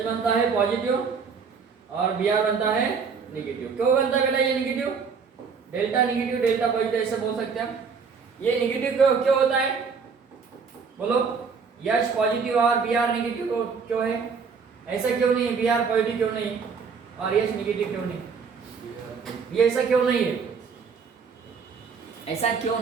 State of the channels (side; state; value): left; quieter; 5.6 dB